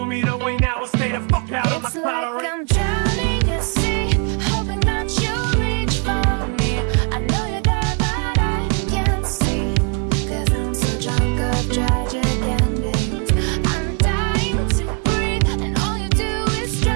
me the way now. I'll stay the fuck out of my It's cloud. like I'm drowning at sea, hoping that you'll reach for me. I know you're there, but I can't see, cause I'm so drunk of tragic endings. I'm dying to breathe, and all you do is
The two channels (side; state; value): left; quieter; 38.3 dB